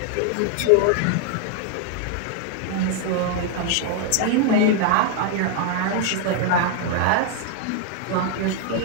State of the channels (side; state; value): both; different; correlation 0.00